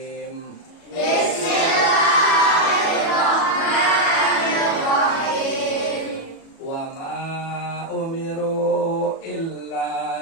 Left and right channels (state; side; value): late; right; 37 ms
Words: Bismillahirrahmanirrahim. Wa ma umiru